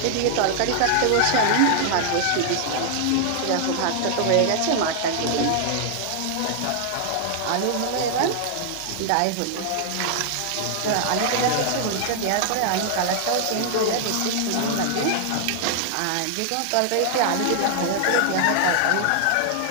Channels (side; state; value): both; different; correlation 0.00